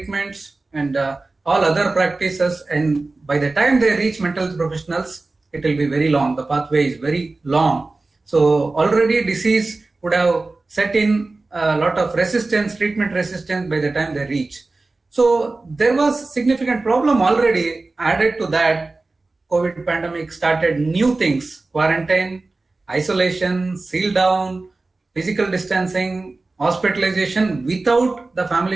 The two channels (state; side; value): quieter; left; 3.4 dB